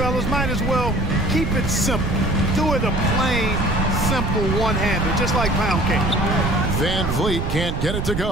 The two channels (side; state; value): right; noise; rumble, 2 dB below the sound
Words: Might as well keep it simple. Do it a plain, simple one-hander, just like pound cake. Van Vliet can't get it to